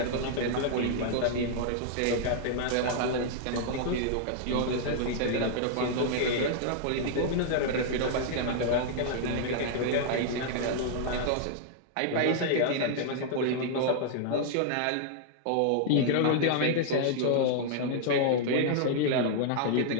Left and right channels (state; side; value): different; both; correlation -0.01